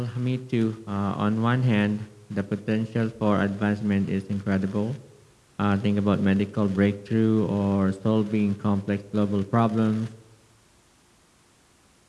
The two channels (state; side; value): identical; both; correlation 1.00